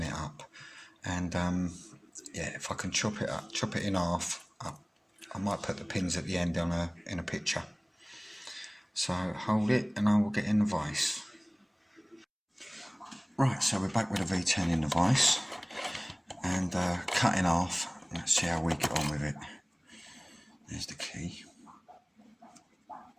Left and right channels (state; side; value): identical; both; correlation 1.00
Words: it up, and yeah, if I can chop it in half, I might put the pins at the end in a picture. So hold it and I will get in the vise. Right, so we're back with a V10 in the vise and cut in half. Let's see how we get on with it. There's the key.